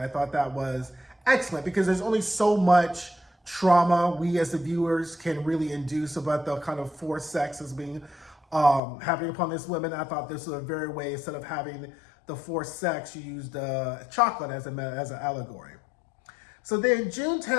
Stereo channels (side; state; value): right; drops out; at 8.8 s